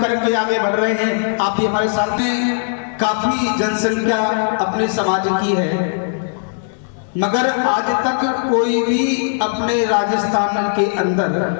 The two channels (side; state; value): right; silent; digital silence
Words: के आगे बढ़ रहे हैं, आप भी हमारे साथ में। काफी जनसंख्या अपने समाज की है, मगर आज तक कोई भी अपने राजस्थान के